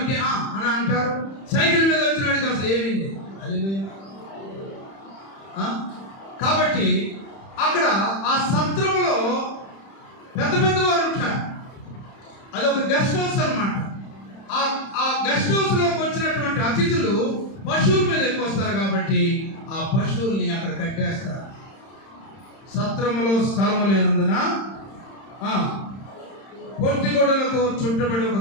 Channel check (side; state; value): right; late; 31 ms